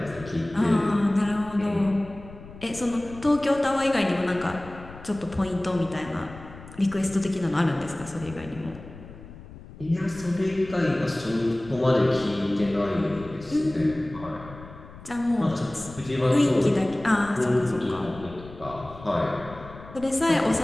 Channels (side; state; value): left; noise; rumble, 17 dB below the sound